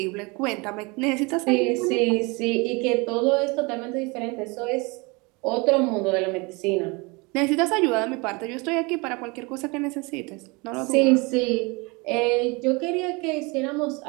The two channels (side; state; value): left; quieter; 27.4 dB